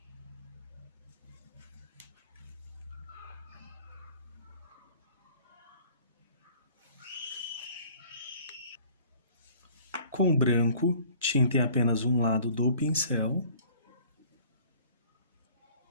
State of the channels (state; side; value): inverted; both; correlation -0.51